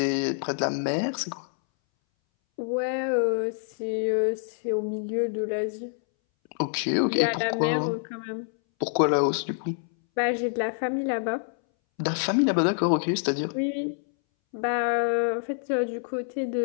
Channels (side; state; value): right; silent; 60 dB below the other